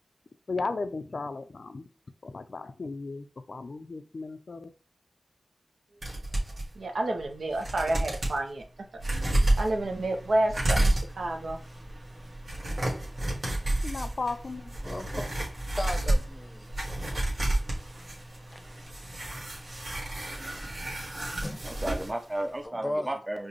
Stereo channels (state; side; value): normal; both; correlation 0.97